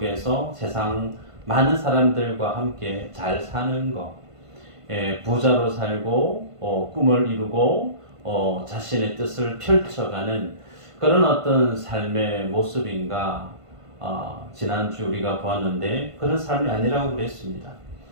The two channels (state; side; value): late; left; 1.5 ms